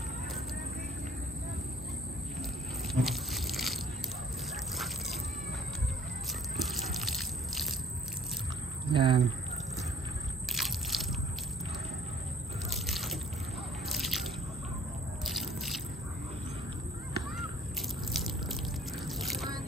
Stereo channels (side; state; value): both; normal; correlation 0.55